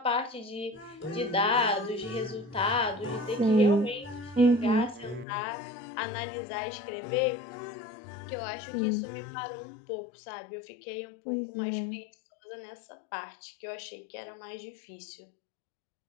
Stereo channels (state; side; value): drops out; right; at 5.2 s